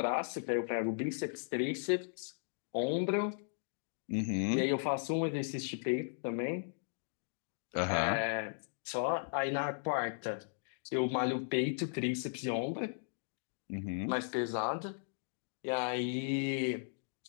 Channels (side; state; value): right; silent; digital silence